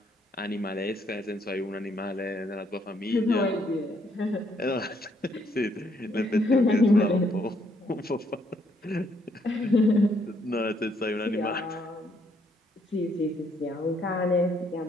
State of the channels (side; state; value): both; normal; correlation 0.70